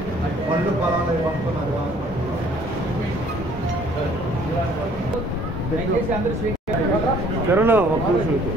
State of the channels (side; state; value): both; normal; correlation 0.58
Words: పనులు పొలాలు పంపుతున్నారు. కరోనా ఒక్క నిమిషం